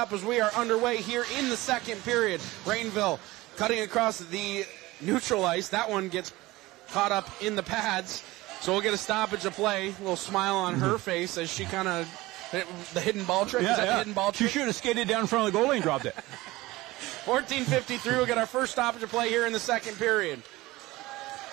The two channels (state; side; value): quieter; left; 19.4 dB